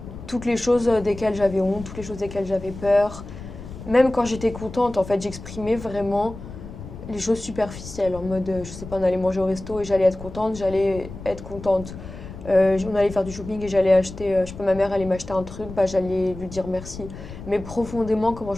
Toutes les choses desquelles j'avais honte, toutes les choses desquelles j'avais peur. Même quand j'étais contente, en fait, j'exprimais vraiment les choses superficielles, en mode, je sais pas, on allait manger au resto et j'allais être contente, on allait faire du shopping et j'allais acheter, je sais pas, ma mère allait m'acheter un truc, bah j'allais lui dire merci. Mais profondément, comment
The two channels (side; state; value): left; noise; rumble, 13 dB below the sound